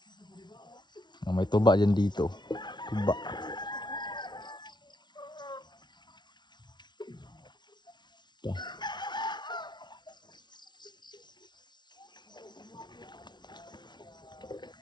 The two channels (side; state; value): right; late; 0.21 ms